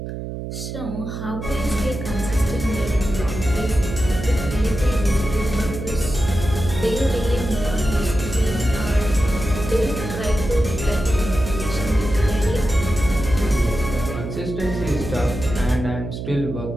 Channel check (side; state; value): right; noise; hum, 7 dB below the sound